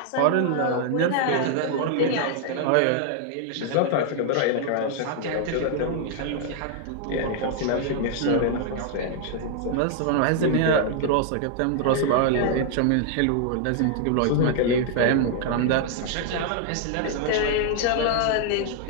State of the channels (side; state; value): both; different; correlation 0.00